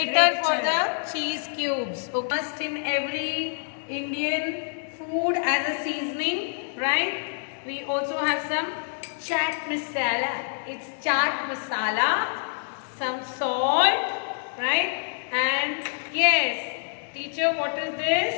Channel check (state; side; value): silent; right; digital silence